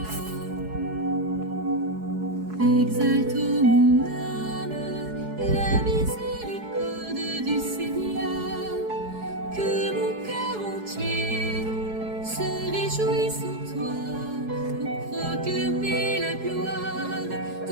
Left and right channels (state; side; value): late; left; 4.7 ms